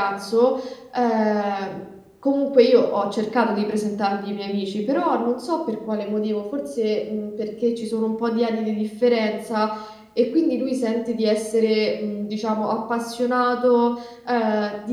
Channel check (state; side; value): identical; both; correlation 1.00